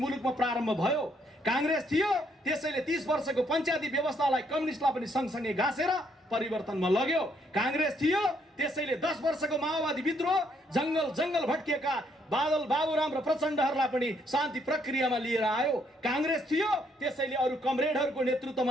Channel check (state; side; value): normal; both; correlation 0.71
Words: प्रारम्भ भयो, कांग्रेस थियो त्यसैले 30 वर्षको पञ्चायती व्यवस्थालाई कम्युनिस्टलाई पनि सँगसँगै घाँसेर परिवर्तनमा लग्यो, कांग्रेस थियो त्यसैले 10 वर्षको माओवादी विद्रोह जंगल भट्किएका बादल बाबुराम र प्रचण्डहरूलाई पनि शान्ति प्रक्रियामा लिएर आयो, कांग्रेस थियो त्यसैले अरू कमरेडहरूको नेतृत्वमा